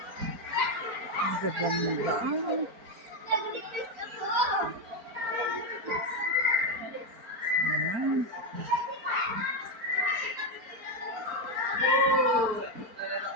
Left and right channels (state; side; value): late; left; 4.4 ms